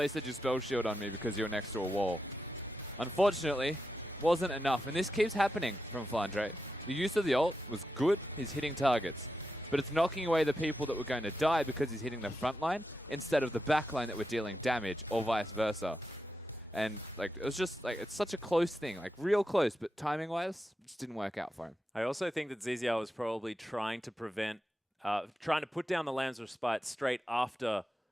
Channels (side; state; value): both; normal; correlation 0.87